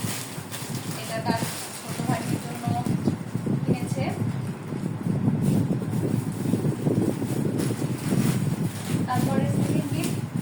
এটা তার ছোট ভাগ্নির জন্য কিনেছে। তারপরে সেকেন্ড গিফট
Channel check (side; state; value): both; identical; correlation 1.00